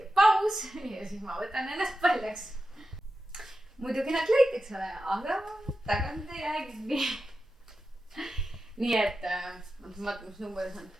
paus ja siis ma võtan ennast paljaks. Muidugi nad leiti, eks ole, aga tagant ei jää kinni. Nii et, vaatame, mis number see on.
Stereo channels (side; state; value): both; normal; correlation 0.91